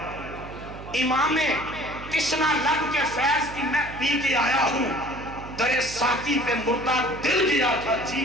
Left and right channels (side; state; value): right; noise; hum, 13 dB below the sound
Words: امام تشنا لب کے فیض کی میں پی کے آیا ہوں. در ساقی پہ مردہ دل گیا تھا جی